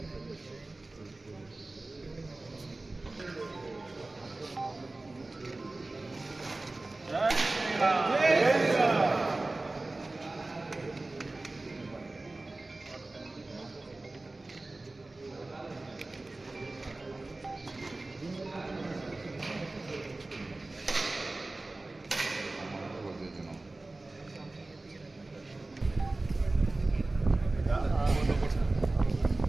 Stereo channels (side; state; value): left; quieter; 3.0 dB